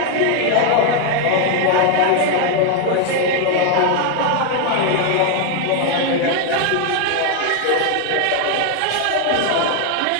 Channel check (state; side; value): different; both; correlation 0.01